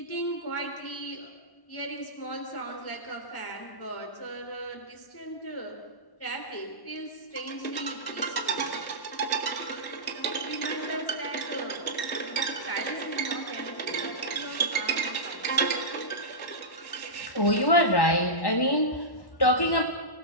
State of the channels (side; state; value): right; late; 1.1 ms